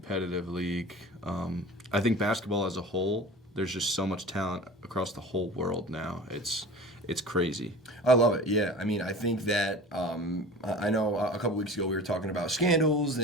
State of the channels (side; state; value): both; normal; correlation 0.38